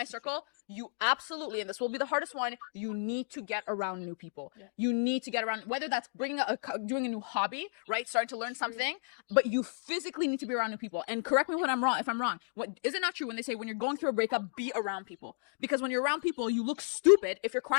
circle. You absolutely, and this will be the hardest one, you need to get around new people. Yeah. You need to get around, whether that's doing a new hobby, right? Starting to learn something, but you physically need to be around new people. And correct me if I'm wrong. Is it not true when they say when you're going through a breakup, be around people? Because when you're around people, you look stupid if you're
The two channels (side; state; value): right; silent; digital silence